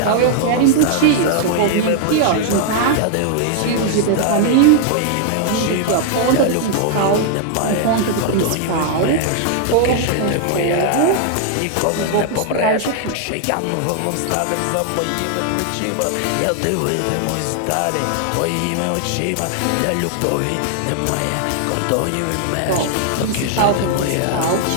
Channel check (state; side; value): different; both; correlation 0.00